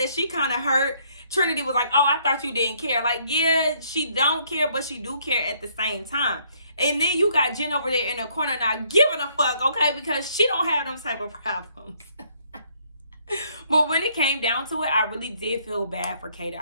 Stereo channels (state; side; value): inverted; both; correlation -0.67